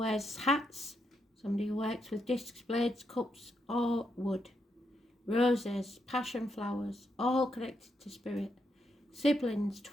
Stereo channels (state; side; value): normal; both; correlation 0.80